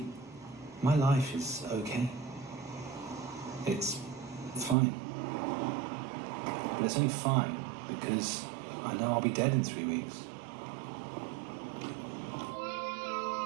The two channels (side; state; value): left; drops out; at 4.8 s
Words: my life is okay. It's fine. But it's only fine because I know I'll be dead in 3 weeks.